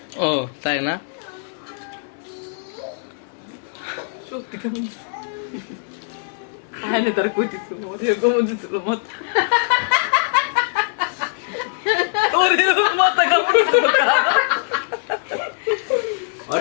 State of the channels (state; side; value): silent; right; 65 dB below the other